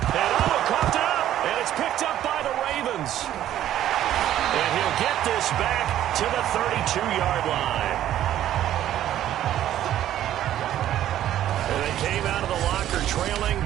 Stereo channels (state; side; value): quieter; left; 12.1 dB